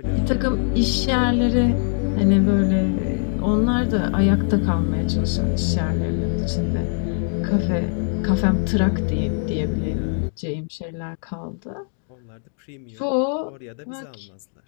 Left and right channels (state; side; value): silent; right; 59 dB below the other